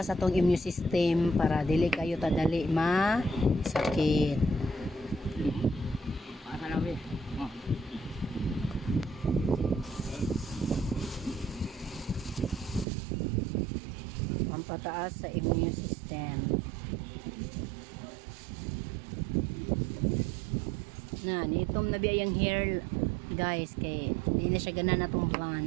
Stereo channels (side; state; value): left; drops out; at 12.9 s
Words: atong immune system para dili kayo tadali sakit. Pampataas sa immune system. Na nitom na biya yung hair guys kay hindi na siya gana na itong